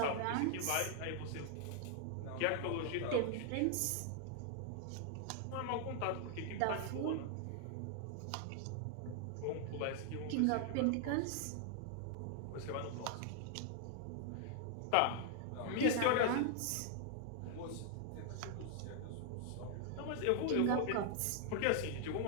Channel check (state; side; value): different; both; correlation 0.00